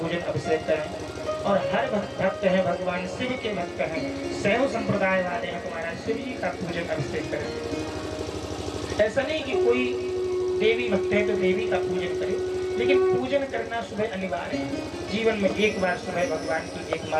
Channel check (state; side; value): identical; both; correlation 1.00